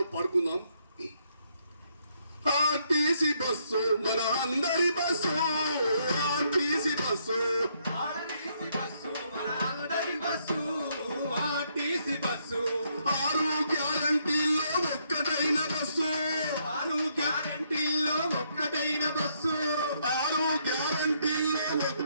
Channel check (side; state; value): both; inverted; correlation -0.73